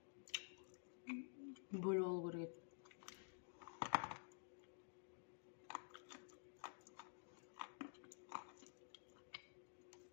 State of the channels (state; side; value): silent; right; digital silence